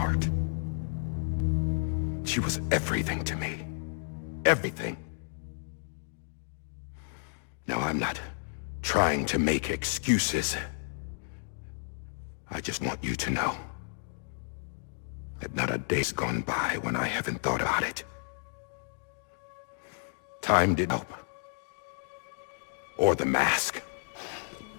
She was everything to me. Everything. Now, I'm not trying to make excuses. I just want you to know that not a day's gone by when I haven't thought about it. Time didn't help. Or the mask.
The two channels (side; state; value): right; silent; digital silence